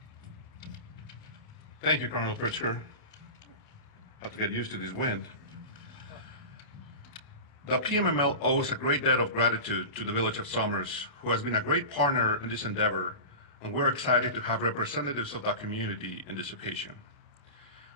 Thank you, Colonel Pritzker. Have to get used to this wind. The PMML owes a great debt of gratitude to the Village of Somers, who has been a great partner in this endeavor, and we're excited to have representatives of that community in this occasion.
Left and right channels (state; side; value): late; right; 28 ms